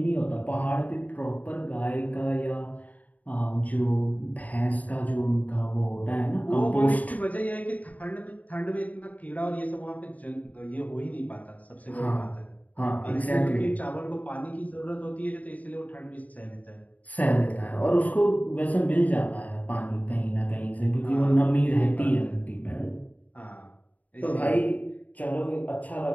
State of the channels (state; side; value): late; right; 0.074 ms